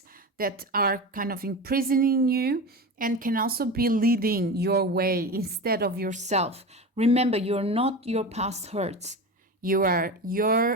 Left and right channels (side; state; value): both; normal; correlation 0.26